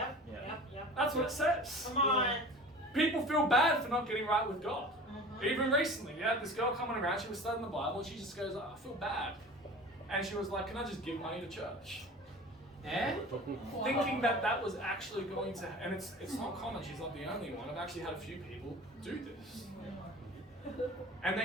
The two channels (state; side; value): normal; both; correlation 0.39